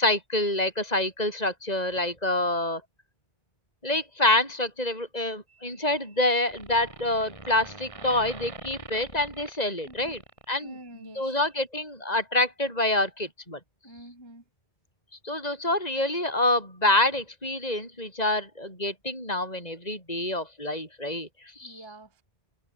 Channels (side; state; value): right; late; 1.9 ms